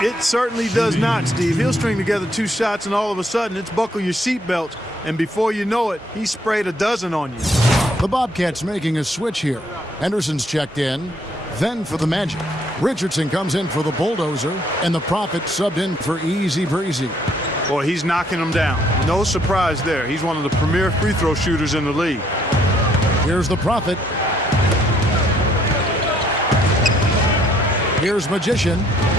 It certainly does not, Steve. He'll string together 2 shots, and all of a sudden, it's buckle your seatbelts. And before you know it, he sprayed a dozen on you. The Bobcats making a switch here. Henderson's checked in. Then for the Magic, Richardson comes in for the Bulldozer, and the Prophet subbed in for Easy Breezy. Boy, he's knocking them down. No surprise there. He's one of the premier free throw shooters in the league. Here's the Prophet. Here's Magician.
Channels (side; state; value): both; normal; correlation 0.67